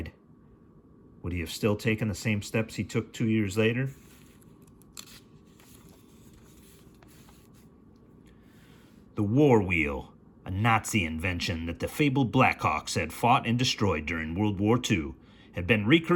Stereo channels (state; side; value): identical; both; correlation 1.00